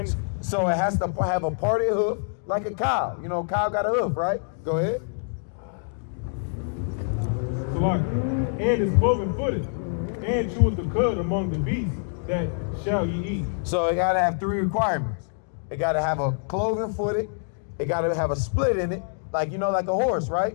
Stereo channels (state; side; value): silent; right; digital silence